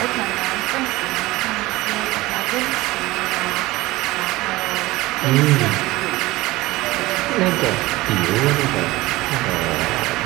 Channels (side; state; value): left; quieter; 19.4 dB